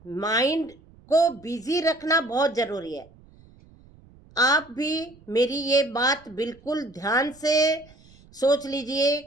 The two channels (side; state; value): right; noise; rumble, 26 dB below the sound